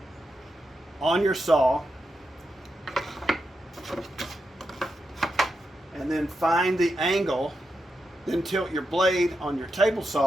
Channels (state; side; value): normal; both; correlation 0.86